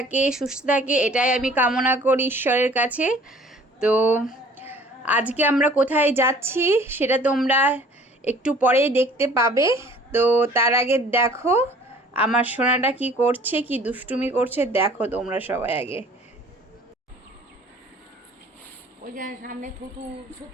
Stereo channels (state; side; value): normal; both; correlation 0.51